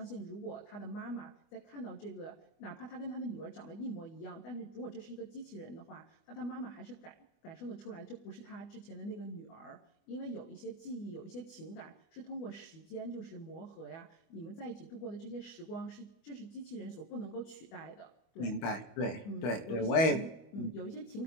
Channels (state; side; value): late; right; 25 ms